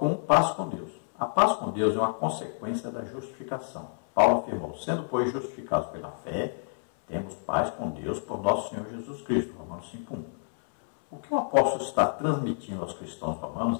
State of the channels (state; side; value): silent; right; 59 dB below the other